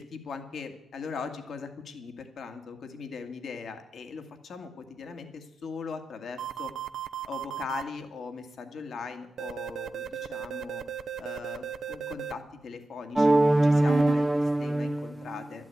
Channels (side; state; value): both; normal; correlation 0.92